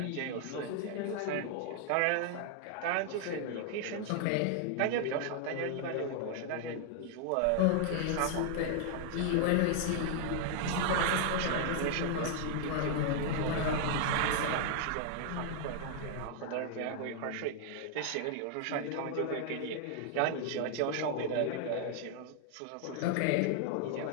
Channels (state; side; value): different; both; correlation 0.00